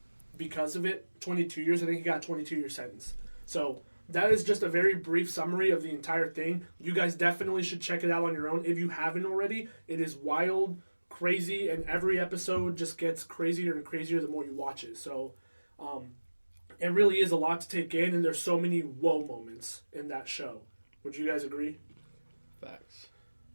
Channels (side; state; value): both; inverted; correlation -1.00